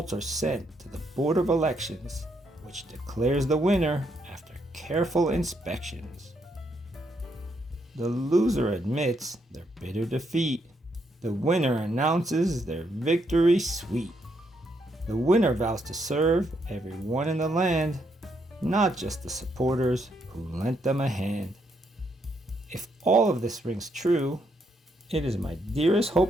are sent to the Board of Elections, which declares the winner after careful inspections. The loser admits their bitter defeat. The winner announces their victory sweet. The winner vows to serve everyone in the land, not just the supporters who lent them a hand. If all of this rings true, it is my dearest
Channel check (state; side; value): normal; both; correlation 0.76